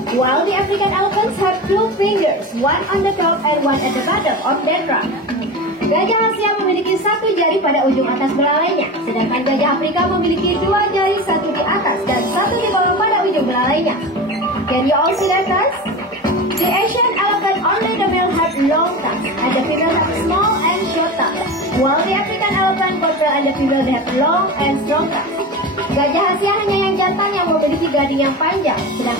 while the African elephants have 2 fingers, one on the top and one at the bottom of their trunk. Gajah Asia memiliki 1 jari pada ujung atas belalainya, sedangkan gajah Afrika memiliki 2 jari, 1 di atas dan 1 di bawah pada ujung belalainya. Can you all see that, guys? The Asian elephant, only the male have long tusks and the female have small and short tusks, while the African elephant, both male and the female they have long and strong tusks. Gajah Asia hanya yang jantan yang memiliki gading yang panjang,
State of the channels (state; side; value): normal; both; correlation 0.28